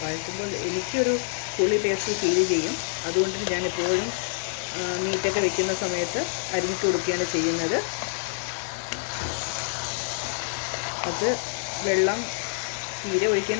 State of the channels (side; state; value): right; silent; digital silence